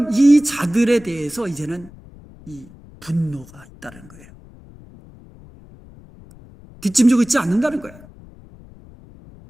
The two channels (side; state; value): left; noise; rumble, 22 dB below the sound